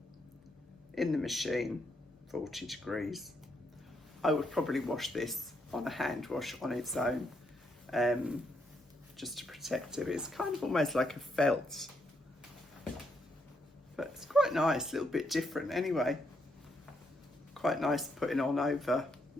In the machine. 40 degrees. I would probably wash this on a hand wash on its own, just to protect it. It's kind of almost like a felt, but it's quite nice, a little bit different anyway. Quite nice putting on over,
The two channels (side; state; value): both; normal; correlation 0.77